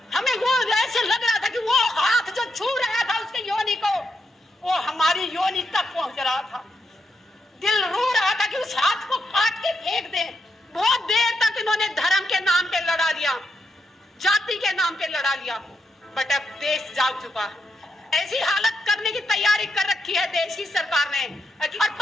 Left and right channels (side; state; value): both; normal; correlation 0.82